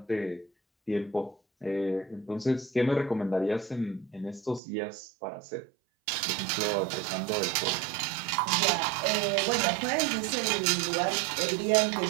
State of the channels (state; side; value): drops out; left; at 4.6 s